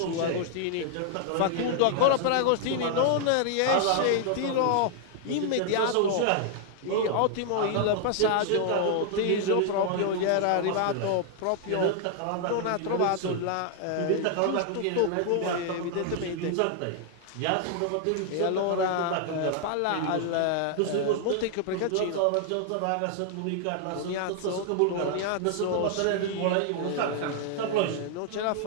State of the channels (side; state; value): both; different; correlation 0.00